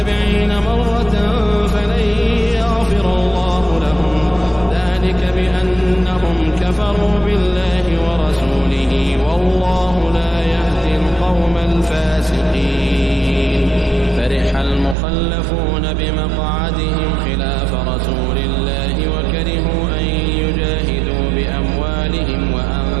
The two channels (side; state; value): left; drops out; at 15.0 s